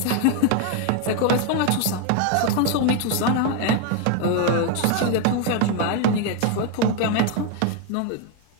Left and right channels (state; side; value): different; both; correlation 0.01